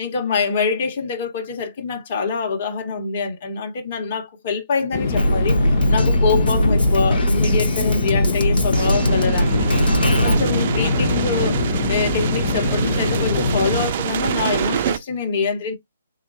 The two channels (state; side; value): inverted; both; correlation -0.70